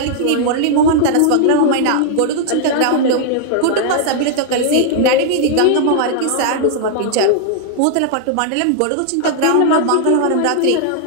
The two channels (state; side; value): different; both; correlation -0.01